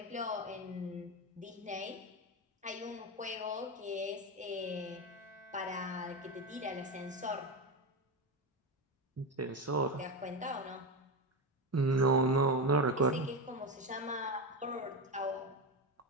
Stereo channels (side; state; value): both; normal; correlation 0.16